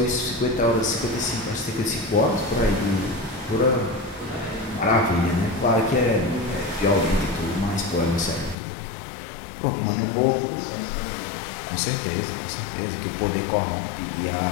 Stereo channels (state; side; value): drops out; right; at 8.6 s